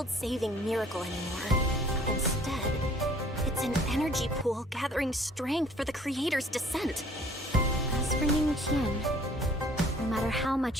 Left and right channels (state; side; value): normal; both; correlation 0.55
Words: miracle anymore. Instead, it's an energy pool gathering strength for the creator's descent. As for Ning Qian, no matter how